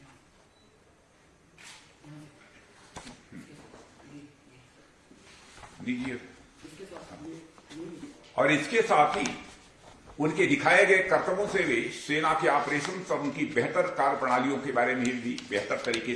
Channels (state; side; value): identical; both; correlation 1.00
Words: और इसके साथ ही उनके दिखाए गए कर्तव्यों से वे सेना के ऑपरेशन और उनकी बेहतर कार्य प्रणालियों के बारे में भी बेहतर तरीके